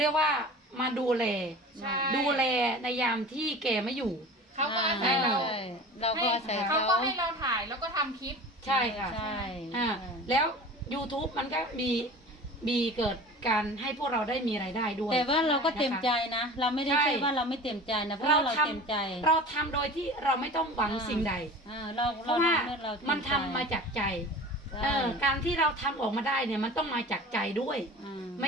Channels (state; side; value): normal; both; correlation 0.38